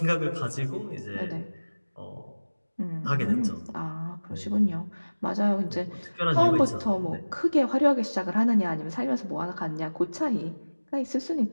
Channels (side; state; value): both; inverted; correlation -1.00